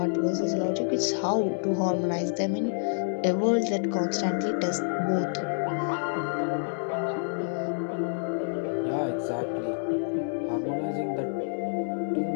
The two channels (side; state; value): right; silent; digital silence